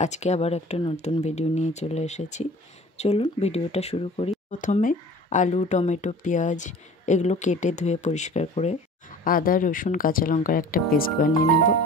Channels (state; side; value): normal; both; correlation 0.44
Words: আজকে আবার একটা নতুন ভিডিও নিয়ে চলে এসেছি। চলুন ভিডিওটা শুরু করি। প্রথমে আলু, টমেটো, পেঁয়াজ এগুলো কেটে ধুয়ে পরিষ্কার করে আদা, রসুন, কাঁচা লঙ্কার একটা পেস্ট বানিয়ে নেব।